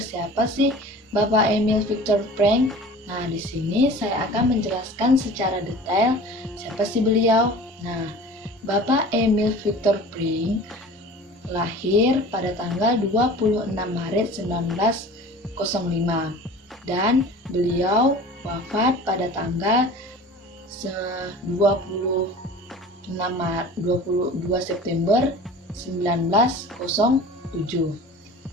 siapa sih Bapak Emil Viktor Frankl. Nah, di sini saya akan menjelaskan secara detail siapa sih beliau. Nah, Bapak Emil Viktor Frankl lahir pada tanggal 26 Maret 1905 dan beliau wafat pada tanggal 22 September 1907.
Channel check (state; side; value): normal; both; correlation 0.41